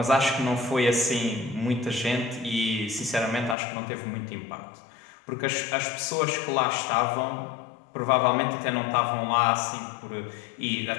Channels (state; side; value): drops out; right; at 3.6 s